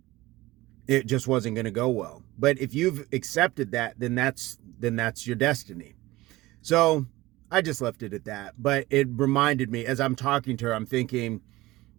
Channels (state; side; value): quieter; left; 18.9 dB